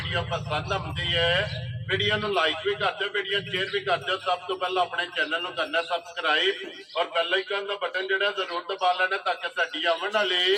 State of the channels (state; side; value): identical; both; correlation 1.00